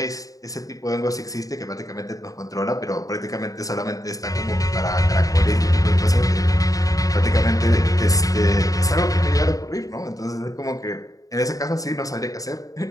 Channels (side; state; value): right; late; 0.17 ms